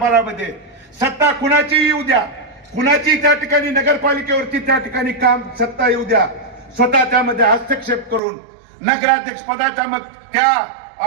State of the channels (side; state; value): left; drops out; at 8.2 s